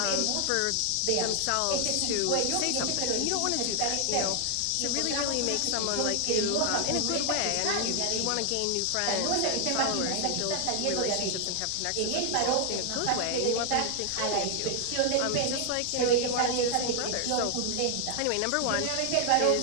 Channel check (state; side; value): different; both; correlation 0.00